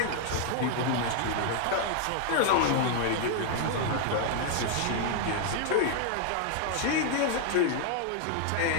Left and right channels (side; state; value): both; different; correlation 0.00